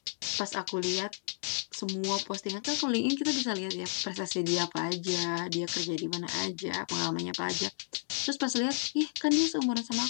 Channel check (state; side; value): silent; right; digital silence